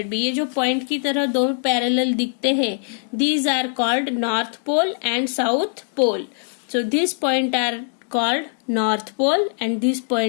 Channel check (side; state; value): right; silent; 64 dB below the other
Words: भी। ये जो पॉइंट की तरह दो पैरेलल दिखते हैं, these are called north pole and south pole. So this point are called north pole and this